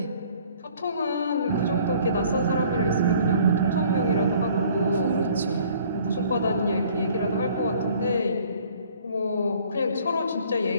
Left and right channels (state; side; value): inverted; both; correlation -0.55